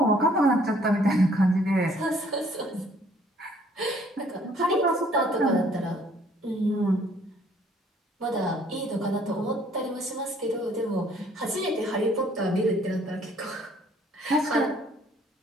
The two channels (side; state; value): both; normal; correlation 0.60